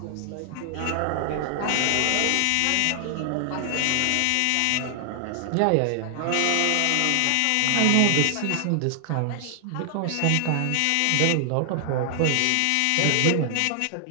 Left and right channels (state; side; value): different; both; correlation 0.00